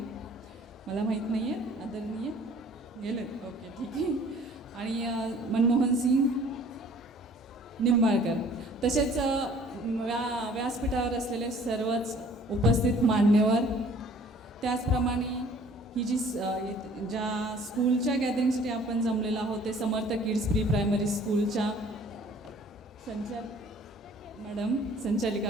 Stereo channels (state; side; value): normal; both; correlation 0.54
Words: मला माहीत नाही आहे, आदरणीय गेलेत, ओके ठीक आहे, आणि मनमोहन सिंग निंबाळकर, तसेच व्यासपीठावर असलेले सर्वच उपस्थित मान्यवर, त्याचप्रमाणे ही जी ज्या स्कूलच्या गॅदरिंगसाठी आपण जमलेलो आहोत ते समर्थ किड्स प्री प्रायमरी स्कूलच्या